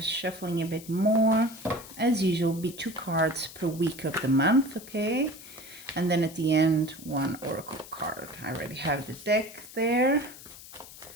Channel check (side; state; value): left; noise; hiss, 17 dB below the sound